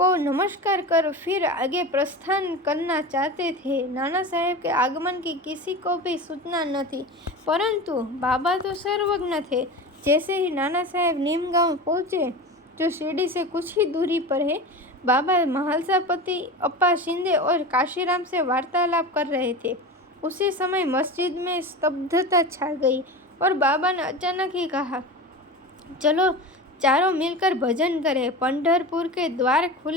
नमस्कार कर फिर आगे प्रस्थान करना चाहते थे। नाना साहेब के आगमन की किसी को भी सूचना न थी, परंतु बाबा तो सर्वज्ञ थे। जैसे ही नाना साहेब नीम गांव पहुँचे, जो शिरडी से कुछ ही दूरी पर है, बाबा महालसापति अप्पा शिंदे और काशीराम से वार्तालाप कर रहे थे। उसी समय मस्जिद में स्तब्धता छा गई और बाबा ने अचानक ही कहा, चलो चारों मिलकर भजन करें। पंढरपुर के द्वार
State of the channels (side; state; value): both; normal; correlation 0.29